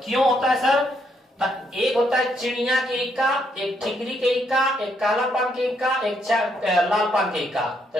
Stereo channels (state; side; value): normal; both; correlation 0.74